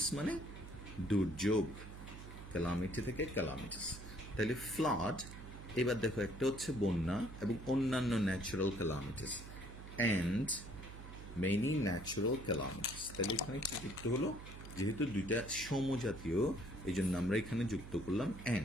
মানে দুর্যোগ, ক্যালামিটি থেকে ক্যালামিটিস। তাহলে ফ্লাড, এবার দেখো, একটা হচ্ছে বন্যা এবং অন্যান্য natural calamities, and many natural calamities. তাহলে এখানে কি যুক্ত হলো? যেহেতু দুইটা সমজাতীয়, এই জন্য আমরা এখানে যুক্ত করলাম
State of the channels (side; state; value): right; noise; hum, 12 dB below the sound